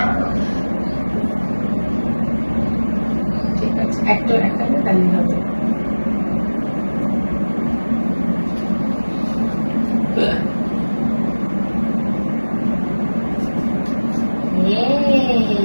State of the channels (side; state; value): both; inverted; correlation -1.00